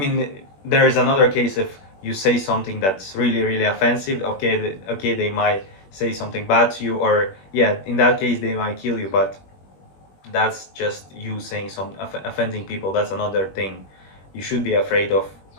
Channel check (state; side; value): late; right; 21 ms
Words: there is another case if you say something that's really, really offensive. Okay, okay, they might say something bad to you, or yeah, in that case, they might kill you. But that's just you saying offending people. That's another thing. You should be afraid of